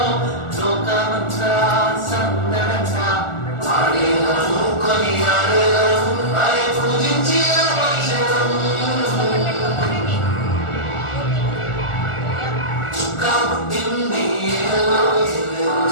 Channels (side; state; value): right; late; 1.4 ms